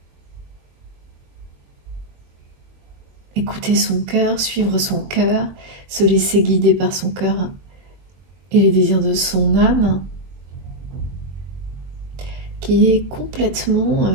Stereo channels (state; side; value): late; left; 21 ms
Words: Écouter son cœur, suivre son cœur, se laisser guider par son cœur et les désirs de son âme, qui est complètement